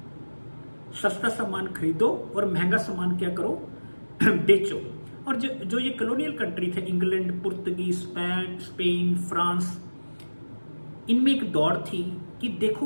सस्ता सामान खरीदो और महंगा सामान क्या करो, बेचो। और जो ये कॉलोनियल कंट्री थे, इंग्लैंड, पुर्तगीज, स्पेन, फ्रांस, इनमें एक दौड़ थी कि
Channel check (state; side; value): inverted; both; correlation -1.00